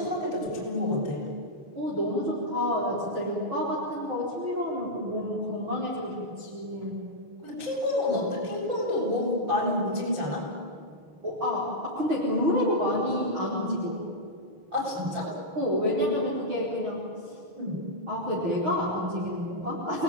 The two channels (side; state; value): left; late; 6.4 ms